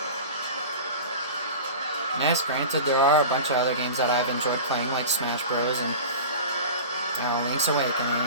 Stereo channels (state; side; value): inverted; both; correlation -0.33